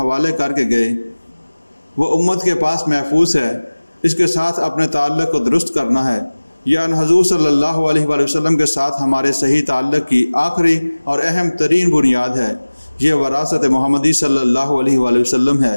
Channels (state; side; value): inverted; both; correlation -1.00